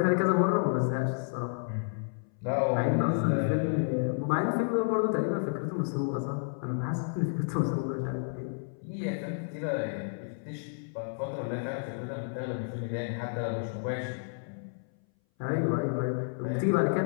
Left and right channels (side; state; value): right; silent; 57 dB below the other